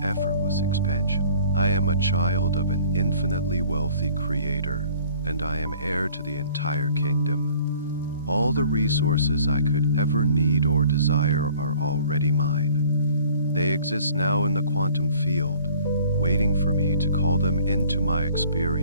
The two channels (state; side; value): inverted; both; correlation -0.53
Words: effortless expansion. I am a child of an infinitely wealthy creator, and I am heir to the entire kingdom. All the resources I could ever need or desire are already mine. They exist now in the quantum field, waiting for me to call them into my